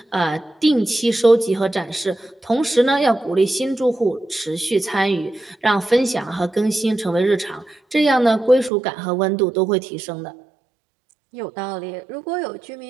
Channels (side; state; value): left; drops out; at 8.7 s